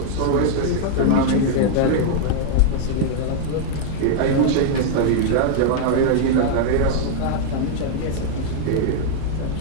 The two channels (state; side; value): different; both; correlation -0.01